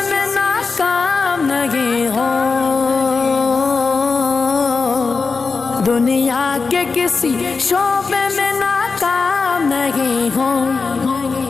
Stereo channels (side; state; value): right; quieter; 4.5 dB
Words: میں ناکام نہیں ہو، دنیا کے کسی شعبے میں ناکام نہیں ہو،